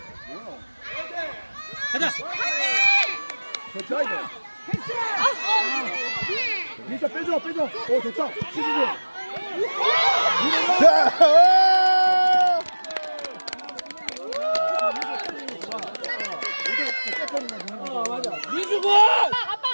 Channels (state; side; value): inverted; both; correlation -1.00